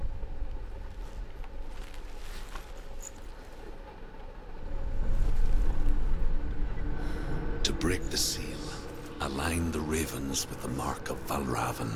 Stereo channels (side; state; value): both; identical; correlation 1.00